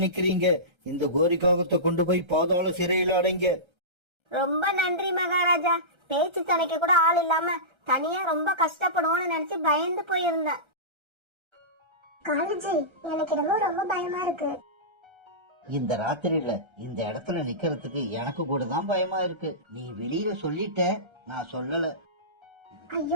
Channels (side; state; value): left; late; 1.3 ms